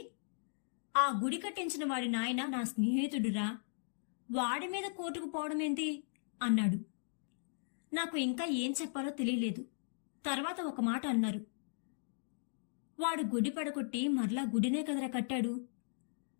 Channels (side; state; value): right; silent; digital silence